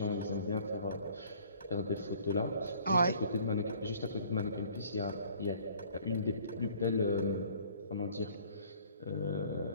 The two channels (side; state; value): both; inverted; correlation -0.54